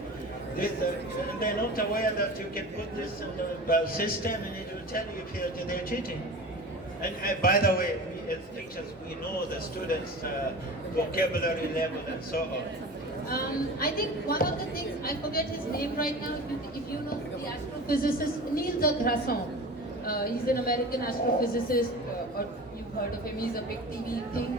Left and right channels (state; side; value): normal; both; correlation 0.35